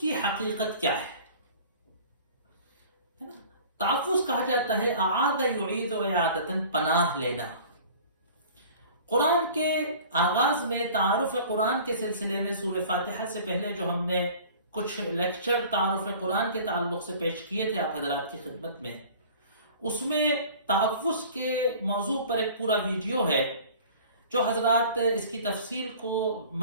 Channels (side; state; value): both; inverted; correlation -0.45